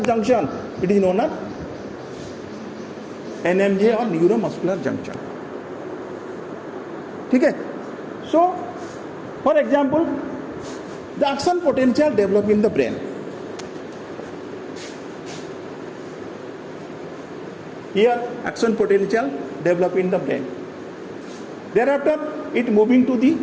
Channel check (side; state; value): both; identical; correlation 1.00